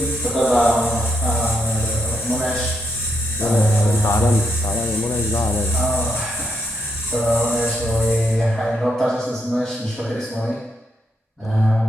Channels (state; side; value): normal; both; correlation 0.79